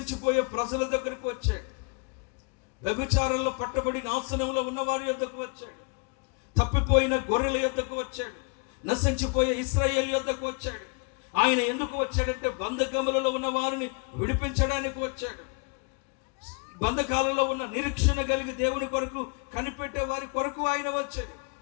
ప్రజల దగ్గరికి వచ్చాడు. వ్యభిచారంలో పట్టబడి నాశనంలో ఉన్న వారి యొద్దకు వచ్చాడు. తప్పిపోయిన గొర్రెల యొద్దకు వచ్చాడు. నశించిపోయే ఇశ్రాయేలు యొద్దకు వచ్చాడు. ఆయన ఎందుకు వచ్చాడంటే బంధకములలో ఉన్న వారిని విడిపించడానికి వచ్చాడు. బంధకాలలో ఉన్న నిరీక్షణ కలిగి దేవుని కొరకు కనిపెట్టే వారి కొరకు ఆయన వచ్చాడు.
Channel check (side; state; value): right; quieter; 35.8 dB